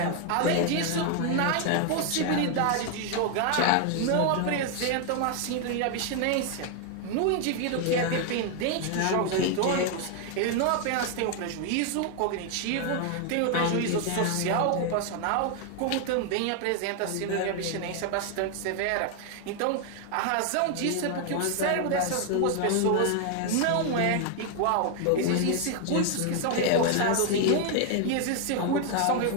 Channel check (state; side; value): different; both; correlation 0.00